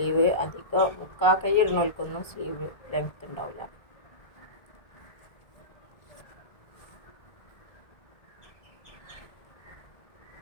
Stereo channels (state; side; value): late; right; 1.3 ms